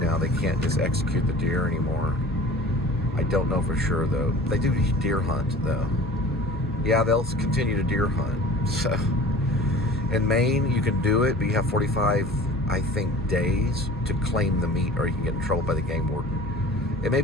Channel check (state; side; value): normal; both; correlation 0.42